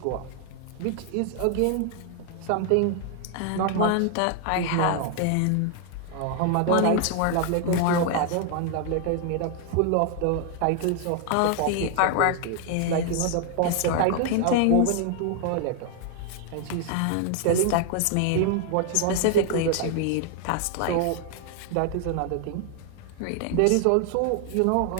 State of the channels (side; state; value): both; different; correlation 0.00